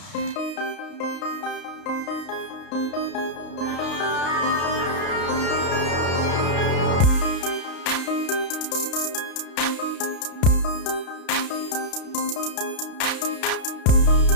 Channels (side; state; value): right; late; 32 ms